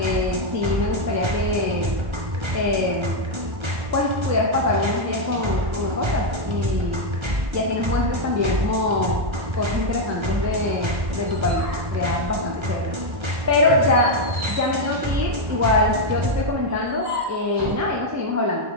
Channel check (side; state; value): left; late; 1.3 ms